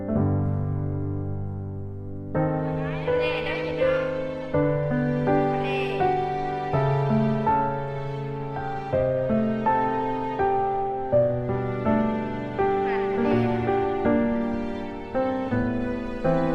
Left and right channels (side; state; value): both; identical; correlation 1.00